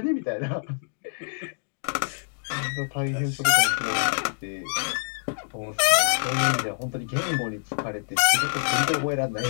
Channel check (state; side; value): silent; right; digital silence